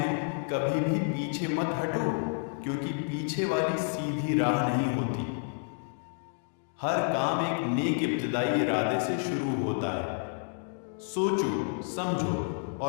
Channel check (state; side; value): silent; right; 58 dB below the other